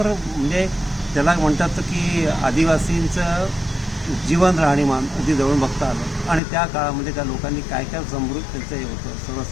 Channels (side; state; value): right; drops out; at 6.4 s